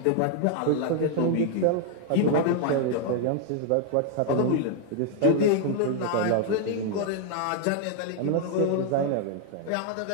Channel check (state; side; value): different; both; correlation 0.00